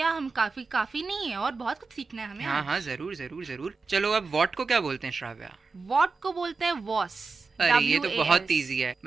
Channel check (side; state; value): left; quieter; 4.4 dB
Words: हम काफी नहीं है और बहुत कुछ सीखना है हमें। हाँ, जरूर। चलो, अब वॉट को क्या बोलते हैं श्राव्या? वॉट को बोलते हैं वॉस, अरे ये तो बहुत WAS। इजी है,